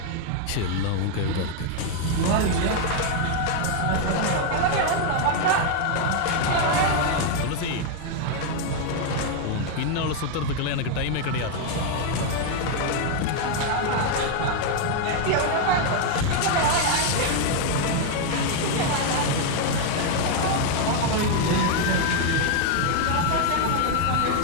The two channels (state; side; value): different; both; correlation 0.00